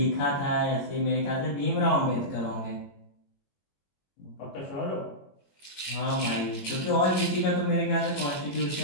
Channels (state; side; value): late; right; 22 ms